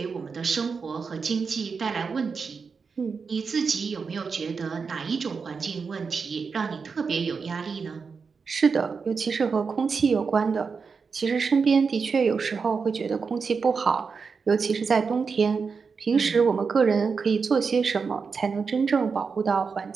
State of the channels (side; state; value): left; quieter; 5.3 dB